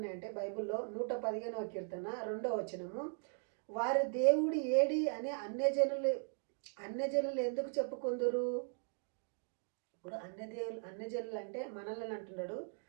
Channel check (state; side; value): silent; left; 52 dB below the other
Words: బైబిల్లో 115వ కీర్తన 2వ వచనము, వారి దేవుడు ఏడి అని అన్యజనులు ఎందుకు చెప్పుకుందురు? ఇప్పుడు అన్యజనులు అంటే మనల్ని అంటున్నాడు,